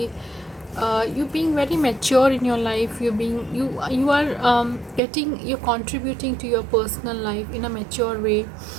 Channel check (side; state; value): left; drops out; at 5.0 s